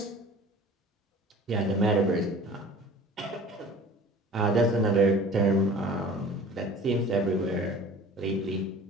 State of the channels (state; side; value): normal; both; correlation 0.44